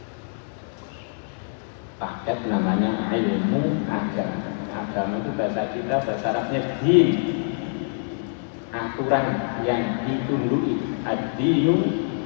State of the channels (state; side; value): silent; right; digital silence